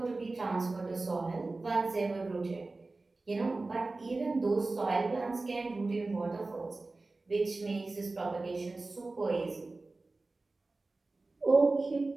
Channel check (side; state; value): left; quieter; 3.4 dB